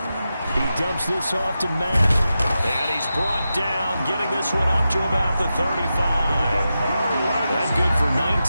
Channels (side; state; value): both; inverted; correlation -0.90